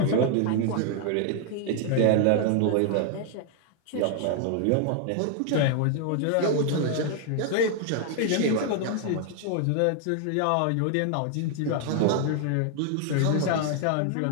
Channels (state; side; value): different; both; correlation 0.00